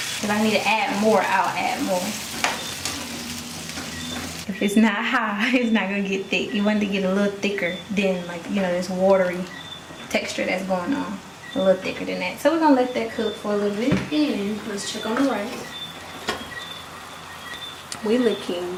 If I need to add more, I'll add more. If it's not high, it's not gonna get thick. You want it to get a little thicker than this watery texture that's going on. A little thicker than that. So we're gonna let that cook for a little bit. And let's check on the rice. We looking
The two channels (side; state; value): both; identical; correlation 1.00